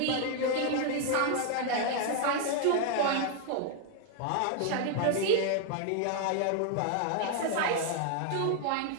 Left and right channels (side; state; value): both; different; correlation 0.00